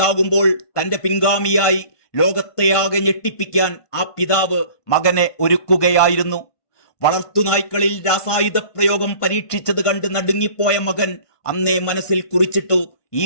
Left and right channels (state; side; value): late; right; 1.5 ms